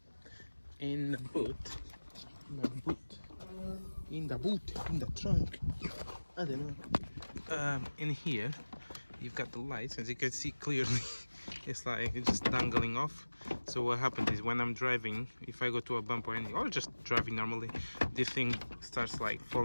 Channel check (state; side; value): inverted; both; correlation -1.00